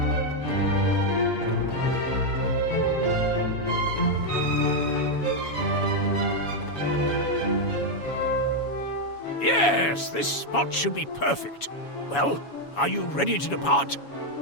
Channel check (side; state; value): right; late; 7.2 ms